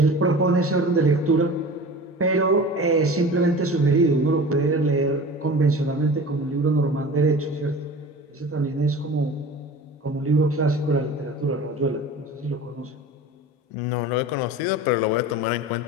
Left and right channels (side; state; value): both; normal; correlation 0.37